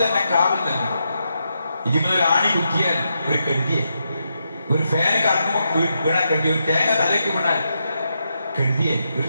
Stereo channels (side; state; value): both; inverted; correlation -0.83